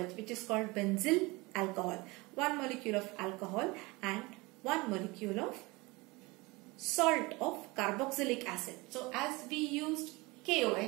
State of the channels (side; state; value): left; quieter; 24.0 dB